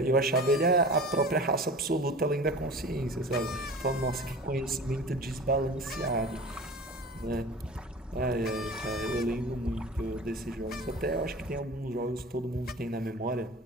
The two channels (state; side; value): normal; both; correlation 0.37